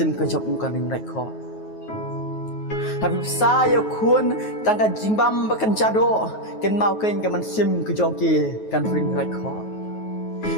kerja bukan ring rekor. Tapi saya kun tangga jimbam makan jadok. Kan mau kan kemen sim kerja kan ring rekor.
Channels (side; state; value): right; late; 9.3 ms